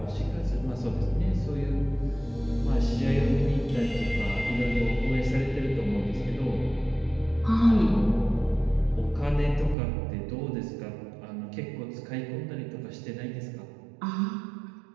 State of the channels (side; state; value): left; drops out; at 9.8 s